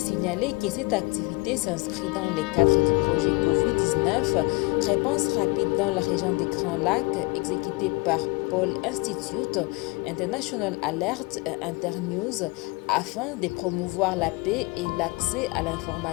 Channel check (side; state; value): right; quieter; 25.9 dB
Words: que cette activité s'inscrit dans le cadre du projet Covid-19, réponse rapide dans la région des Grands Lacs, exécuté par Paul Institute, International Alert et Internews, afin de promouvoir la paix et l'accès à